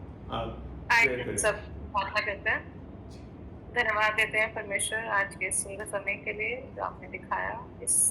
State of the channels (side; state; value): both; identical; correlation 1.00